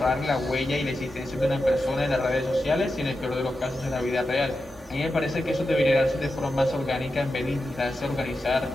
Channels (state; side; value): normal; both; correlation 0.90